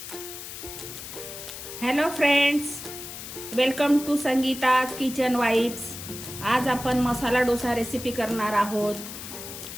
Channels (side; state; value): left; noise; hiss, 10 dB below the sound